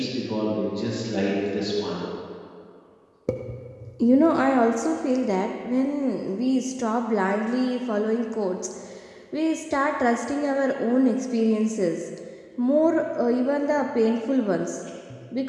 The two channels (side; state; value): both; identical; correlation 1.00